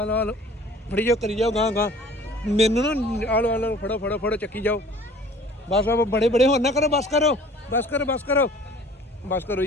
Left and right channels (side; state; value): both; normal; correlation 0.49